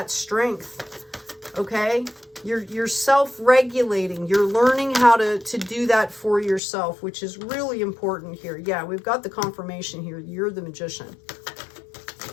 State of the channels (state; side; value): drops out; right; at 6.6 s